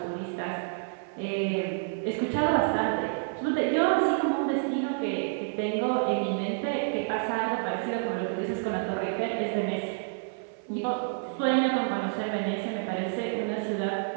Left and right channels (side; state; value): left; silent; 55 dB below the other